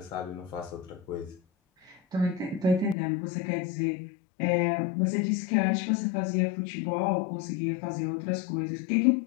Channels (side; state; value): right; drops out; at 3.0 s